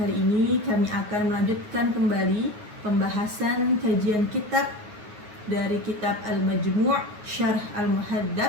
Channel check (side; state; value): left; late; 9.6 ms